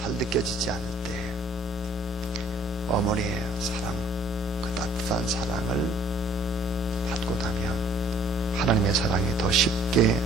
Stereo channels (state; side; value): normal; both; correlation 0.57